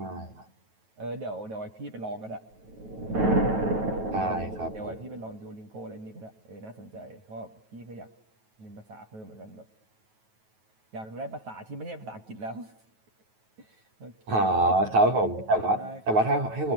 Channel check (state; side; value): late; left; 9.2 ms